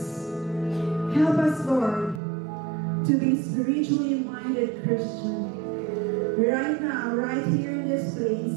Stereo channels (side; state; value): left; drops out; at 2.2 s